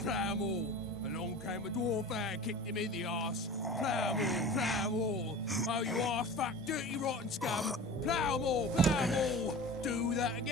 plough 'em all. Along came a dwarf and kicked him in the arse. Plough 'em all, plough 'em all. Oh, you arse fat, dirty, rotten scum. Plough 'em all, plough 'em all. Do that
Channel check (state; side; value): normal; both; correlation 0.36